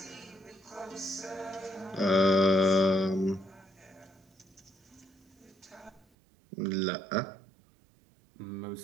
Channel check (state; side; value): drops out; left; at 6.1 s